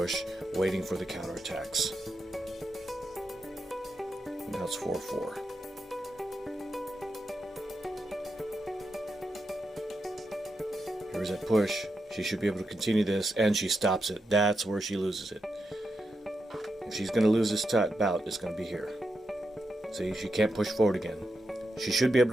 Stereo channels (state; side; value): normal; both; correlation 0.86